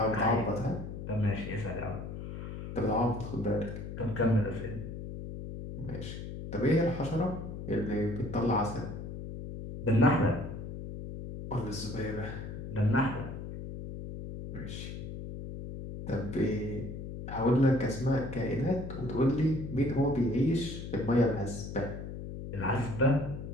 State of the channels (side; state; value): left; noise; hum, 8 dB below the sound